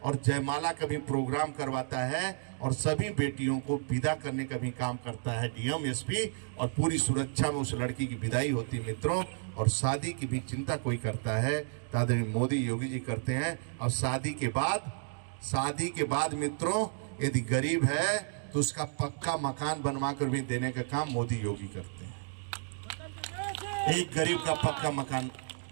और जयमाला का भी प्रोग्राम करवाता है, और सभी बेटियों को विदा करने का भी काम करता है डीएम, एसपी, और पूरी सुरक्षा में उस लड़की की विदाई होती है मित्रों। और शादी की भी चिंता कोई करता है तो आदरणीय मोदी योगी जी करते हैं। और शादी के बाद मित्रों, यदि गरीब है तो उसका पक्का मकान बनवा कर भी देने का काम मोदी योगी करते हैं। एक गरीब का पक्का मकान,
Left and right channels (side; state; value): left; silent; digital silence